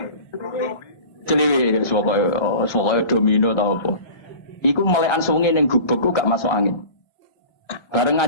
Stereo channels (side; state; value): right; late; 1.6 ms